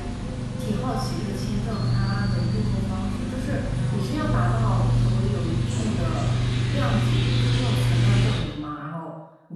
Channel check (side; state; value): both; identical; correlation 1.00